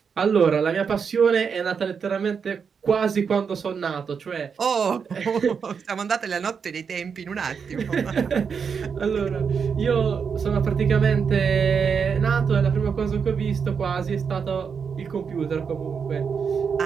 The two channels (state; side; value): quieter; left; 6.3 dB